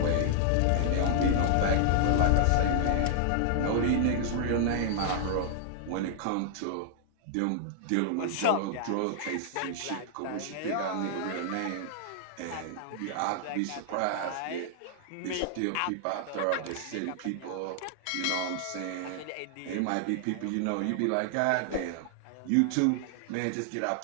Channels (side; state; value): both; different; correlation -0.01